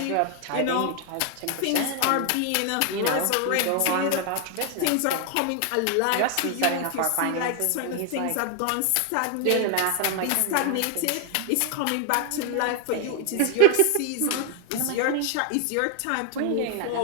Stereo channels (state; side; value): different; both; correlation 0.00